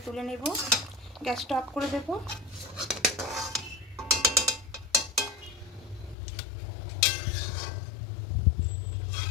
তুলে নেব, গ্যাসটা অফ করে দেব।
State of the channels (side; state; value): right; drops out; at 6.2 s